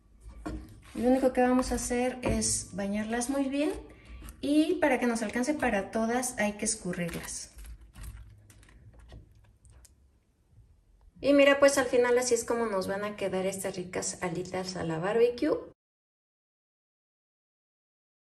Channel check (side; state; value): both; identical; correlation 1.00